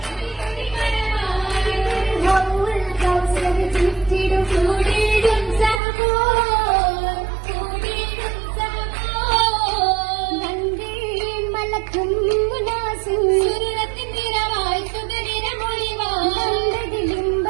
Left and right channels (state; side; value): drops out; left; at 5.8 s